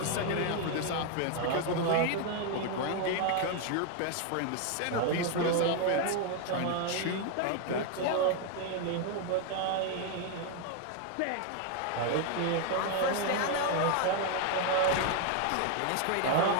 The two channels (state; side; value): different; both; correlation 0.00